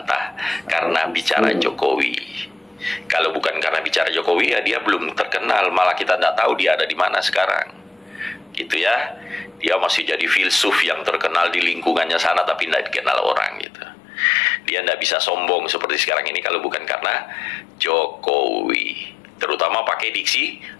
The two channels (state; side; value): drops out; right; at 13.7 s